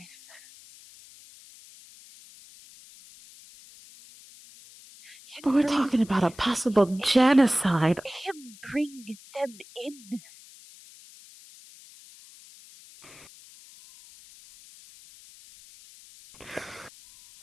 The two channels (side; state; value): left; noise; hiss, 22 dB below the sound